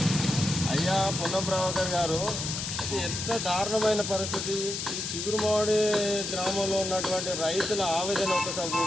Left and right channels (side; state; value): left; noise; hiss, 4 dB below the sound